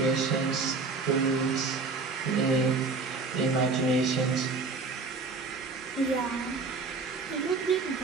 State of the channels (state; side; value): quieter; left; 4.1 dB